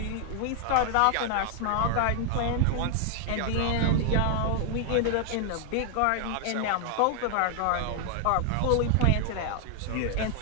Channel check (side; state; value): both; different; correlation 0.00